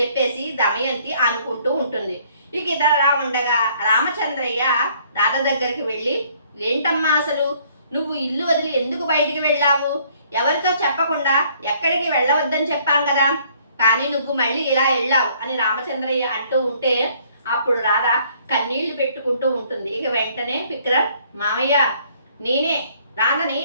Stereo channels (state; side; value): inverted; both; correlation -0.62